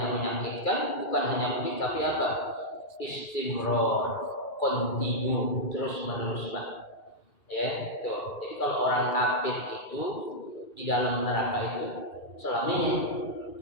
menyakitkan, bukan hanya pedih, tapi apa? Istimrar, continue, terus menerus, Pak. Ya, tuh. Jadi kalau orang kafir itu di dalam neraka itu selamanya.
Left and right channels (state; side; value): late; right; 2.3 ms